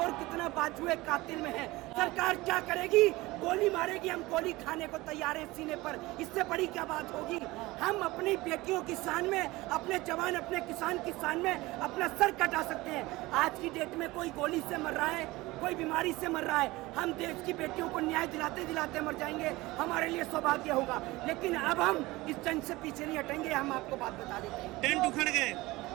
कितना बाजुए कातिल में है। सरकार क्या करेगी? गोली मारेगी, हम गोली खाने को तैयार है सीने पर, इससे बड़ी क्या बात होगी? हम अपनी बेटियों की शान में, अपने जवान, अपने किसान की शान में अपना सर कटा सकते हैं। आज की डेट में कोई गोली से मर रहा है, कोई बीमारी से मर रहा है, हम देश की बेटियों को न्याय दिलाते दिलाते मर जाएंगे, हमारे लिए सौभाग्य होगा। लेकिन अब हम इस जंग से पीछे नहीं हटेंगे। हम आपको बात बता देते हैं, टेंट उखड़ गए,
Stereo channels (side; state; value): left; quieter; 20.3 dB